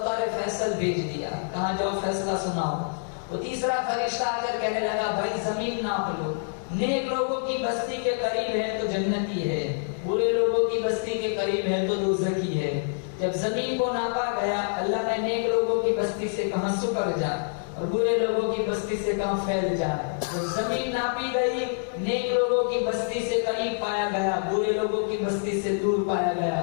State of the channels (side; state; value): right; silent; digital silence